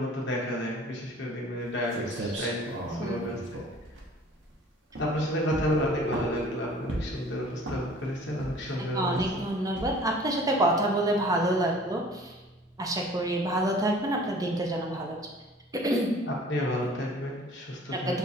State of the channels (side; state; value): both; normal; correlation 0.49